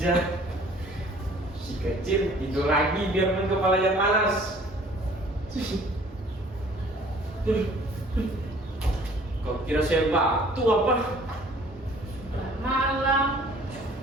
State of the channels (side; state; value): both; normal; correlation 0.53